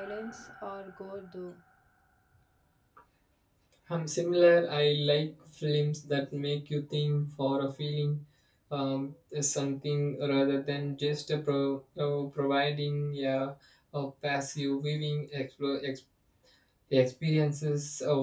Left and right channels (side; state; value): both; identical; correlation 1.00